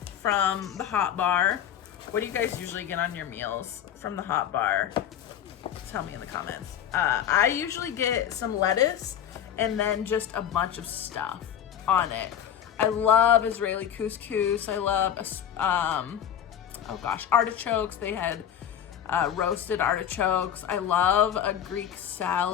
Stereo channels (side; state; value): right; quieter; 9.6 dB